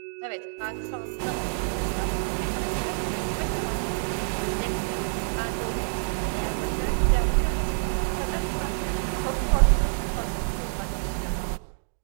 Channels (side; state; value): left; silent; digital silence